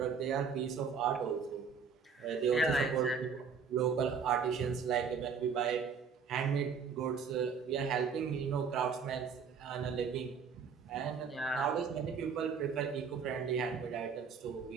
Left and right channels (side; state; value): left; quieter; 6.0 dB